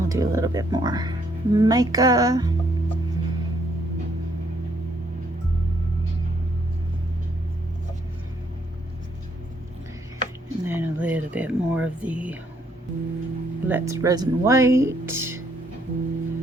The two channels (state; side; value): normal; both; correlation 0.70